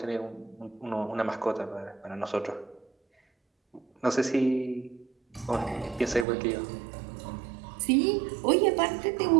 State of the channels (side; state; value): left; drops out; at 6.2 s